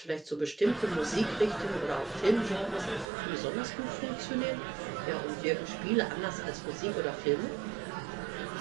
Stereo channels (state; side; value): drops out; left; at 3.1 s